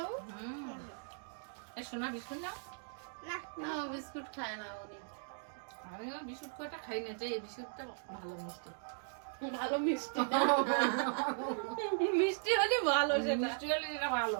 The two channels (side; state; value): left; silent; digital silence